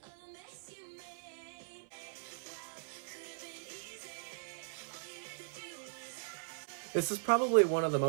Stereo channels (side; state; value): left; silent; 52 dB below the other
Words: This is probably one of the